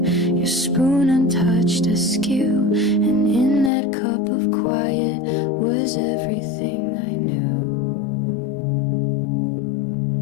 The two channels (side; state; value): right; drops out; at 3.7 s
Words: your spoon untouched askew, and in that cup of quiet was everything I knew.